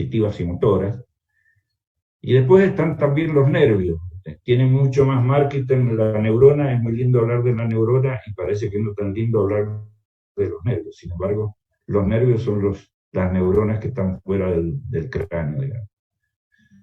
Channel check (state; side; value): identical; both; correlation 1.00